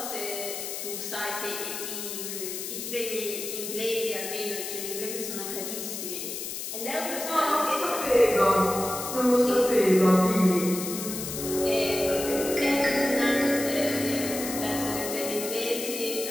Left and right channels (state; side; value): noise; left; hiss, 6 dB below the sound